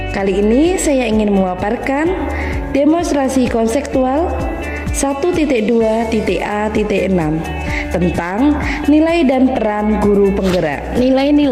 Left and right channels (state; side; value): identical; both; correlation 1.00